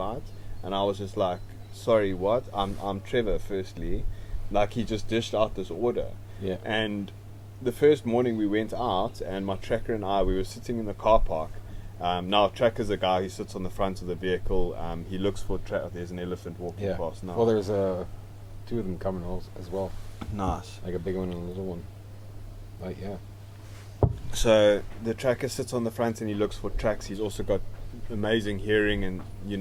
And I was just like, sorry, what? I'm Trevor, firstly. Like, he just dished out this order. And the first morning we went out, and my tracker and I, we were sitting in the car park. Now, Tracker's a guy who sits on the front of the vehicle. He looks for there's an elephant walking past now. Well, there's 2 of them coming as well. Nice. Like a big one and a little one. Like, So the tracker sits on the front and he looks for tracks. He's also got amazing hearing, and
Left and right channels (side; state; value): both; identical; correlation 1.00